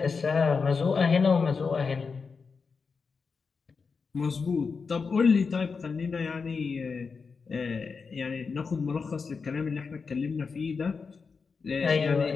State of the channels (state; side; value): quieter; right; 5.1 dB